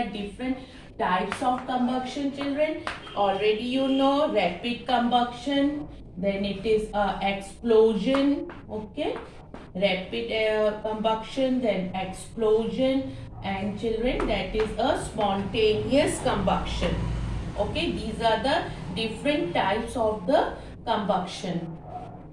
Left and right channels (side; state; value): both; identical; correlation 1.00